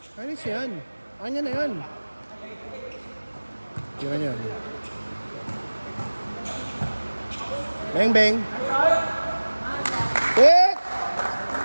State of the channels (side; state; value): both; inverted; correlation -1.00